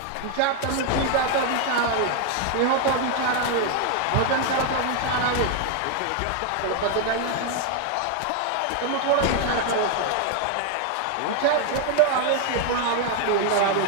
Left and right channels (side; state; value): both; different; correlation 0.00